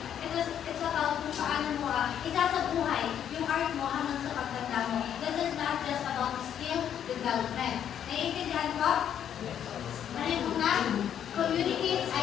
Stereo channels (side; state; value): right; quieter; 9.4 dB